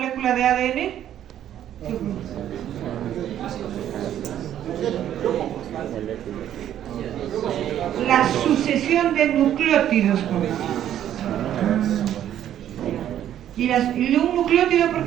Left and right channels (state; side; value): quieter; left; 11.0 dB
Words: molécula de ADN? La sucesión de nucleótidos, ¿Y un nucleótido por